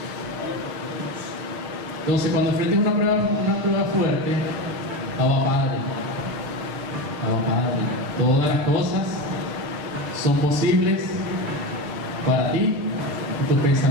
Entonces, cuando enfrentes una prueba fuerte, Abba, Padre, todas las cosas son posibles para ti, y tus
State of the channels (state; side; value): late; left; 6.8 ms